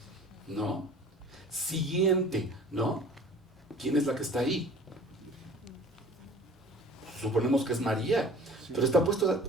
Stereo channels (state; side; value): normal; both; correlation 0.46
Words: ¿No? Siguiente, ¿no? ¿Quién es la que está ahí? Suponemos que es María, pero